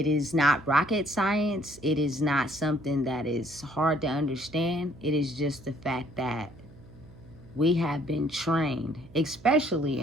is not rocket science. It is not something that is hard to understand. It is just the fact that we have been trained, especially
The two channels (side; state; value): right; noise; hum, 21 dB below the sound